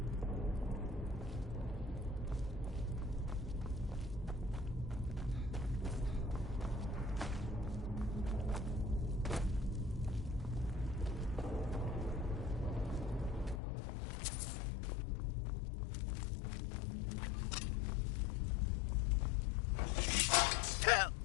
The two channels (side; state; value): right; drops out; at 13.6 s